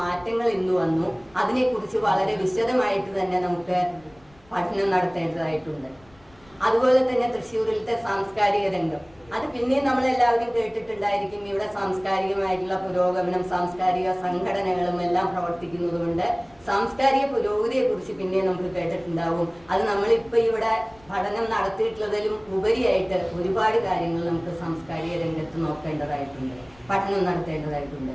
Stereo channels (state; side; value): noise; left; rumble, 28 dB below the sound